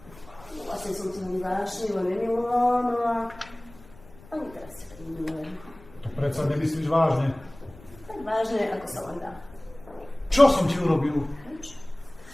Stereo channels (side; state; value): left; noise; rumble, 22 dB below the sound